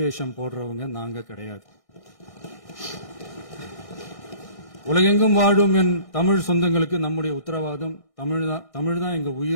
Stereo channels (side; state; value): right; late; 1.6 ms